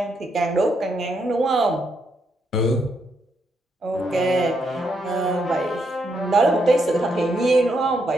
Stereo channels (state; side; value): normal; both; correlation 0.78